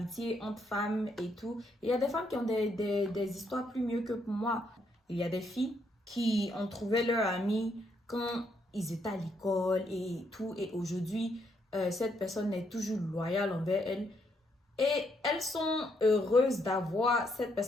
entre femmes et tout, il y a des femmes qui ont des histoires plus mieux que pour moi. Il y a des filles qui ont trouvé leur ami quand ils étaient à l'école et tout. Et aujourd'hui, cette personne est toujours loyale envers elle. Et elles sont heureuses d'avoir cette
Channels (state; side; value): normal; both; correlation 0.74